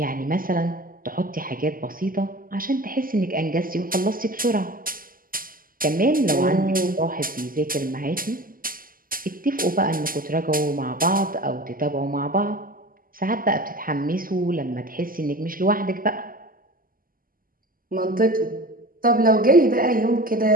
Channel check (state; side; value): late; left; 0.41 ms